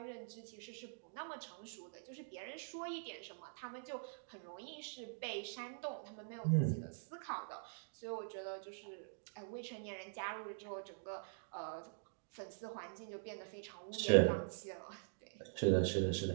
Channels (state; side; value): silent; left; digital silence